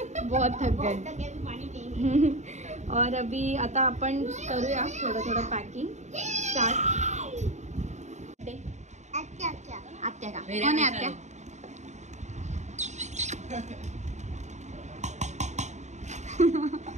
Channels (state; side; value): late; left; 0.34 ms